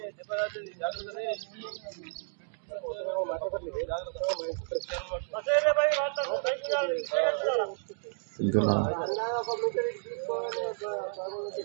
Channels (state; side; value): silent; left; digital silence